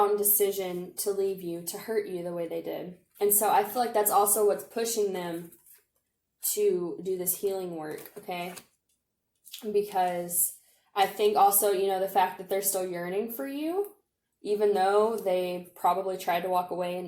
decision to leave you, to hurt you the way they did. And so I feel like that's also what's pushing them to do this healing work, okay? Because I think also, the fact that they're still yearning for you, even though they probably tried to walk away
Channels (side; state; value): both; identical; correlation 1.00